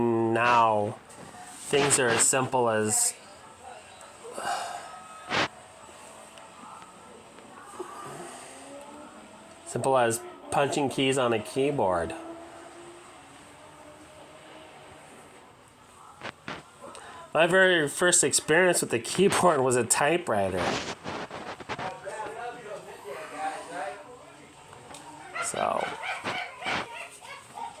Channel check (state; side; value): identical; both; correlation 1.00